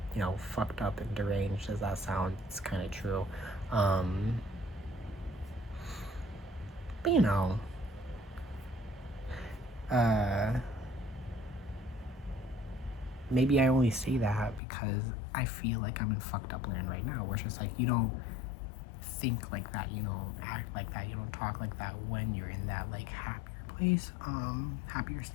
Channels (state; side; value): drops out; right; at 14.6 s